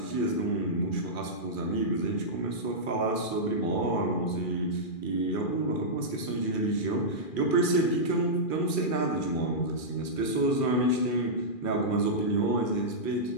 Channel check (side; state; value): right; late; 2.4 ms